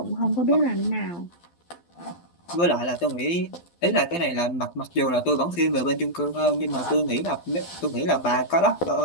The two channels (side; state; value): right; late; 12 ms